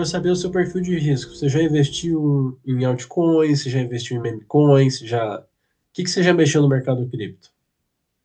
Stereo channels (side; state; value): both; identical; correlation 1.00